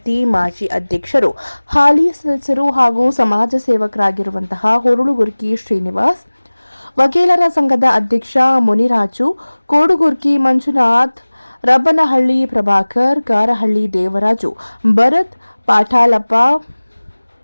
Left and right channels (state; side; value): inverted; both; correlation -1.00